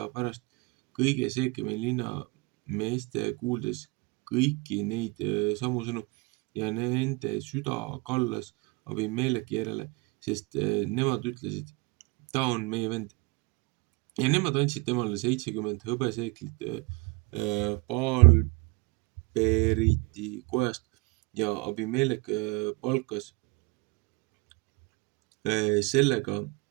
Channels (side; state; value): left; quieter; 26.9 dB